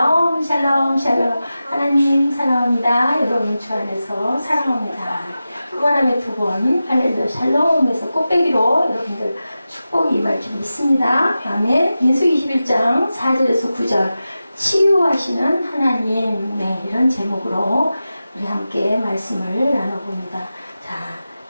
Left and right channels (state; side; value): inverted; both; correlation -0.93